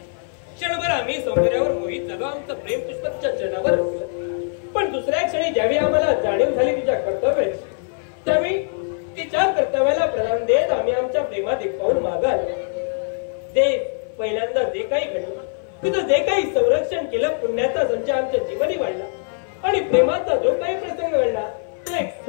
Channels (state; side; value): silent; right; 56 dB below the other